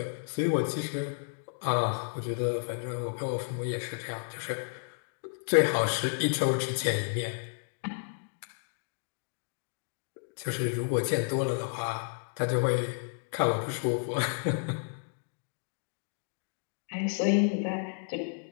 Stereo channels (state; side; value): silent; right; digital silence